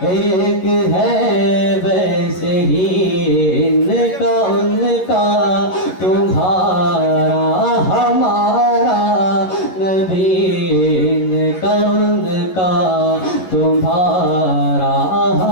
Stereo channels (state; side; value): late; right; 11 ms